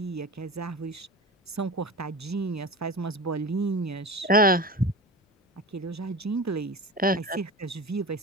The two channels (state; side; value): normal; both; correlation 0.30